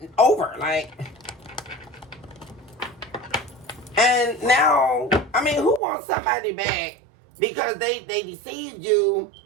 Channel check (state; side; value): drops out; left; at 5.8 s